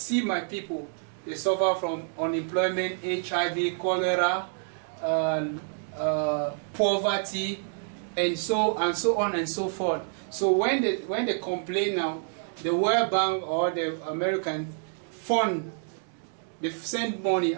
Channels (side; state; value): left; silent; digital silence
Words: my people, they suffer from unemployment, HIV, cholera, poverty, and so on and so forth. So when they complain now, the World Bank or the American fund, they send money,